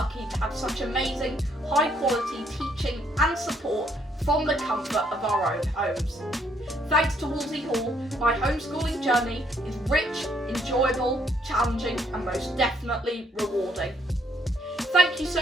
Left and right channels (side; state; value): both; normal; correlation 0.69